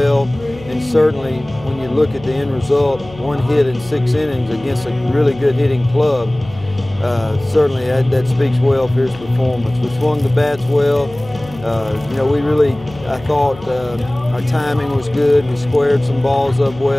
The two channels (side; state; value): left; noise; hum, 18 dB below the sound